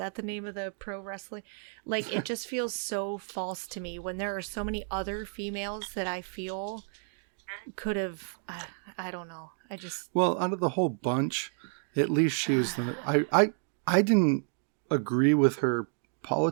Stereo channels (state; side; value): silent; left; 57 dB below the other